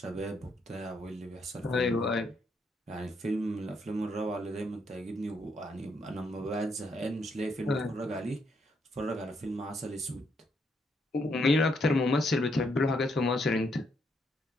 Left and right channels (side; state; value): both; normal; correlation 0.75